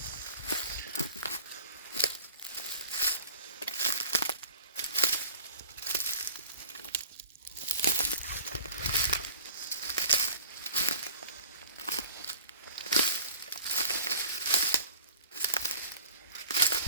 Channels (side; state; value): both; inverted; correlation -0.42